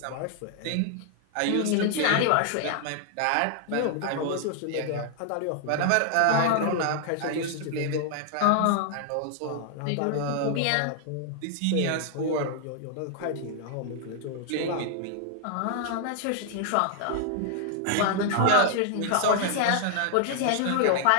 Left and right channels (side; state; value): both; different; correlation 0.00